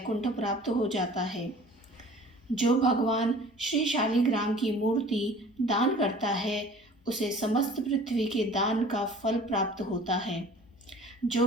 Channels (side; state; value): both; normal; correlation 0.47